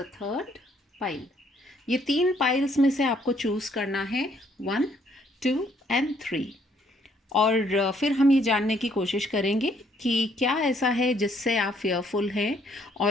third pile। ये तीन पाइल्स में से आपको चूज़ करना है 1, 2 and 3 और फिर हम ये जानने की कोशिश करेंगे कि क्या ऐसा है जिससे आप फेयरफुल हैं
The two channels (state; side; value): normal; both; correlation 0.67